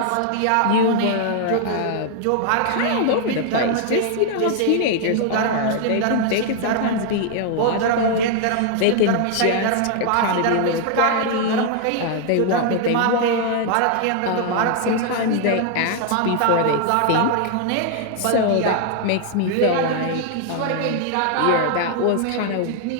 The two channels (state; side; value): different; both; correlation 0.00